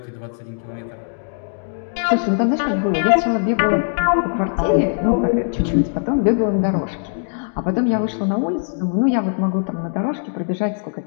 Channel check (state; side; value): silent; right; digital silence